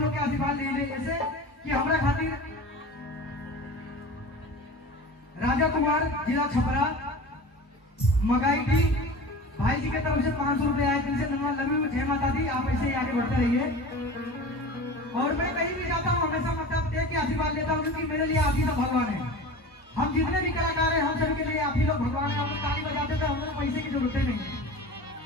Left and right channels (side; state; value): both; normal; correlation 0.35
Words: के आशीर्वाद ले जैसे कि हमारा खातिर राजा कुमार जिला छपरा मगाई की भाई जी की तरफ से 500 रुपए आए, जिनसे धन्यवाद। लव यू, जय माता दी। आप ऐसे ही आगे बढ़ते रहिए। और मैं कहीं भी जाता हूँ हमेशा मतलब देख के आशीर्वाद लेता हूँ, क्योंकि मेरे लिए आप ही सब भगवान है। हम जितने भी कलाकार हैं हम सभी के लिए आप ही लोग भगवान है। हम लोग ताली बजाते थे, हम लोग पैसे की जरूरत नहीं।